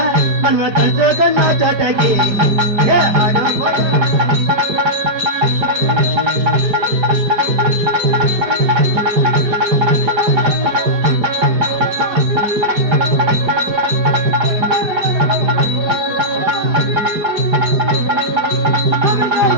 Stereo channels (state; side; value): late; left; 5.0 ms